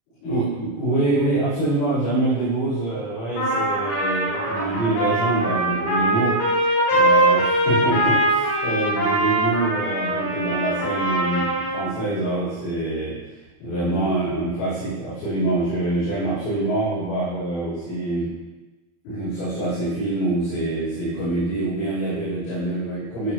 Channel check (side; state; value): right; late; 35 ms